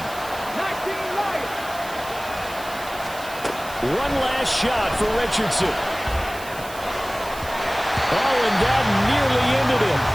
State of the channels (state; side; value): noise; right; hiss, 16 dB below the sound